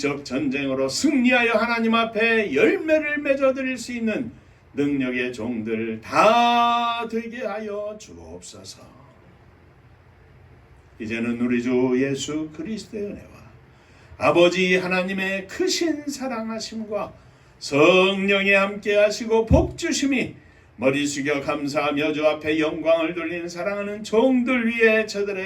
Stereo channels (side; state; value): both; identical; correlation 1.00